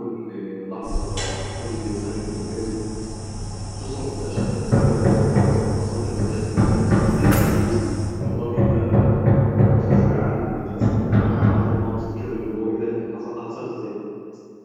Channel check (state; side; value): identical; both; correlation 1.00